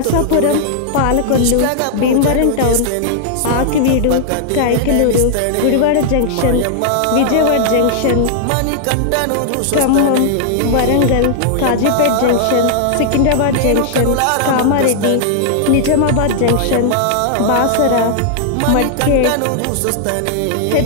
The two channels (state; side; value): different; both; correlation -0.01